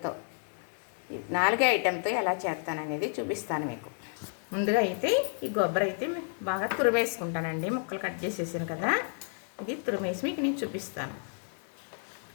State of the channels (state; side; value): silent; right; 57 dB below the other